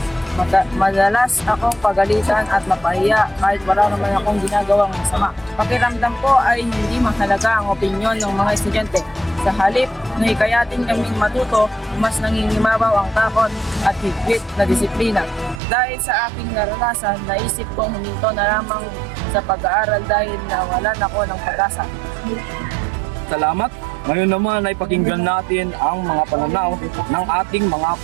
Madalas akong pagalitan at mapahiya kahit wala naman akong ginagawang masama. Pakiramdam ko ay hindi mahalaga ang opinyon ng mga estudyante. Sa halip na hikayatin kaming matuto, mas nangingimabaw ang takot at higpit na disiplina. Dahil sa aking naranasan, naisip kong huminto na lamang sa pag-aaral dahil nawalan ako ng pag-asa. Salamat. Ngayon naman ay pakinggan natin ang mga pananaw ng ating mga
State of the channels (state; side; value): drops out; left; at 15.6 s